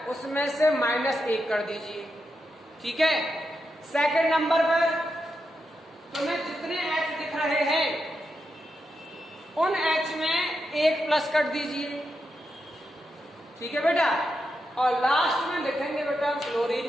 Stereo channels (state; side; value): normal; both; correlation 0.86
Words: उसमें से -1 कर दीजिए। ठीक है। सेकंड नंबर पर तुम्हें जितने H दिख रहे हैं उन H में 1 प्लस कर दीजिए। ठीक है बेटा। और लास्ट में लिखेंगे बेटा